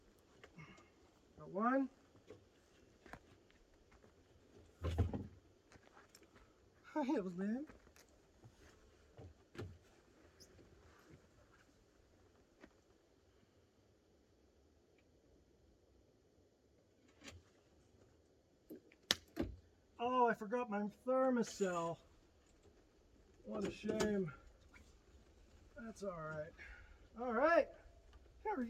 Got one. Hi, Evalyn. Oh, I forgot my thermocell. What a shame. That's all right. All right. There we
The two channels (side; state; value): both; identical; correlation 1.00